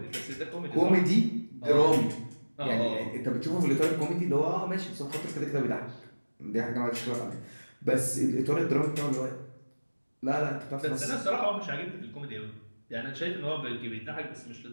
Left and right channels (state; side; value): inverted; both; correlation -1.00